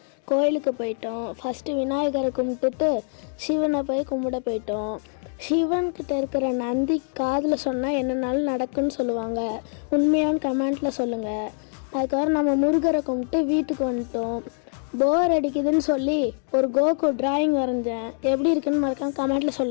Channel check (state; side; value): silent; right; digital silence